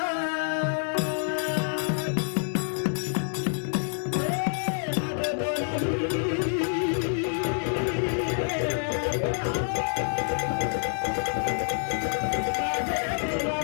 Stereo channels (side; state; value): right; silent; digital silence